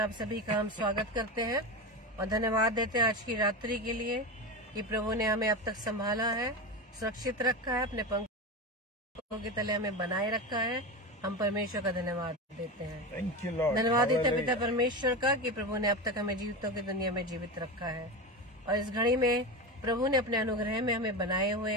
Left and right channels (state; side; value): normal; both; correlation 0.21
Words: सभी का हम स्वागत करते हैं और धन्यवाद देते हैं आज की रात्रि के लिए कि प्रभु ने हमें अब तक संभाला है, सुरक्षित रखा है, अपने पंखों के तले हमें बनाए रखा है। हम परमेश्वर का धन्यवाद देते हैं। Thank you Lord. धन्यवाद देते हैं पिता परमेश्वर का कि प्रभु ने अब तक हमें जीवितों की दुनिया में जीवित रखा है और इस घड़ी में प्रभु ने अपने अनुग्रह में हमें बनाए हुए